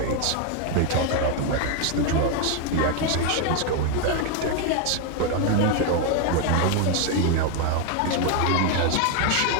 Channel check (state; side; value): different; both; correlation 0.01